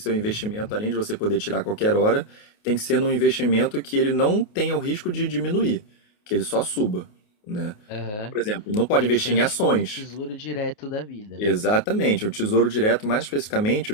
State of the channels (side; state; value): right; late; 28 ms